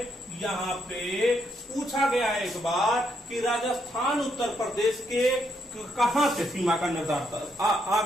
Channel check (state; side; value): normal; both; correlation 0.76